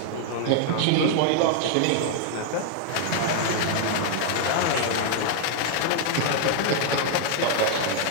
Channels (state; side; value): different; both; correlation 0.00